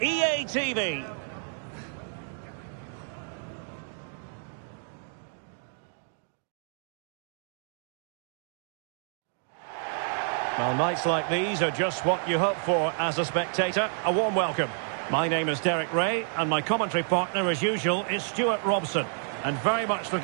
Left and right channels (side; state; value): left; silent; 58 dB below the other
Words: EA TV. Well, nights like these are just what you hope for as a spectator. A warm welcome. My name is Derek Ray, and my commentary partner, as usual, is Stuart Robson. And very much